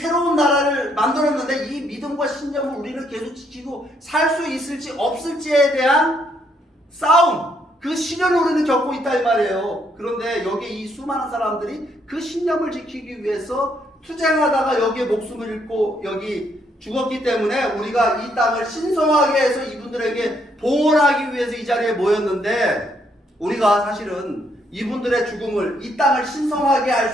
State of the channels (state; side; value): normal; both; correlation 0.72